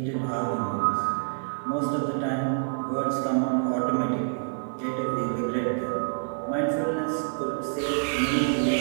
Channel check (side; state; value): left; silent; digital silence